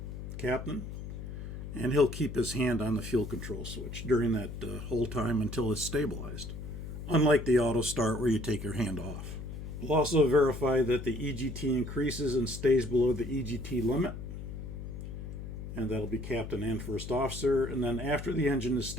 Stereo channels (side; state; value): left; noise; hum, 8 dB below the sound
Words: captain, and he'll keep his hand on the fuel control switch during that whole time until it's stabilized, unlike the auto start where you take your hand off. We'll also verify that the EGT increases and stays below the EGT limit. And that'll be captain and first officer. And then after the engine is